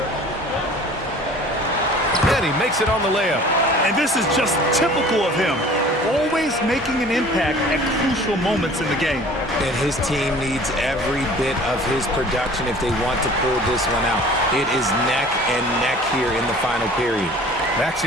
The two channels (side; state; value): both; normal; correlation 0.47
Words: And he makes it on the layup. And this is just typical of him. Always making an impact at crucial moments in the game. And his team needs every bit of his production if they want to pull this one out. It is neck and neck here in the final period.